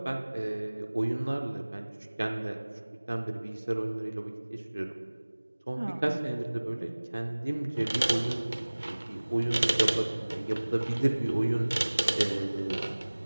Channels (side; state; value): both; inverted; correlation -1.00